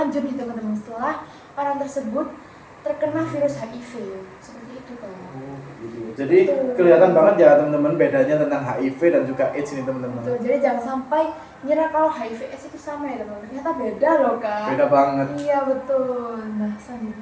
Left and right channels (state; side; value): identical; both; correlation 1.00